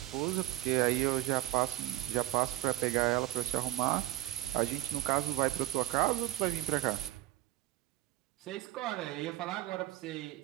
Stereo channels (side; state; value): left; quieter; 15.8 dB